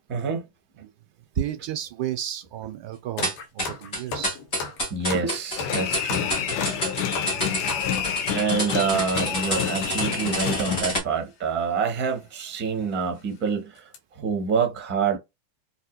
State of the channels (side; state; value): right; late; 5.2 ms